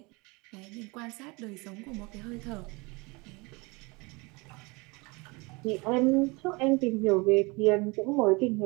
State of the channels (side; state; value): left; quieter; 26.6 dB